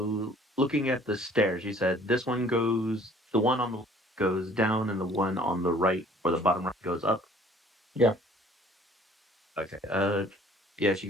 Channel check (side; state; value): both; normal; correlation 0.55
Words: at the stairs, you said this one goes the one on the left goes down and the one on the right or the bottom right goes up. Yeah. Okay. Yeah,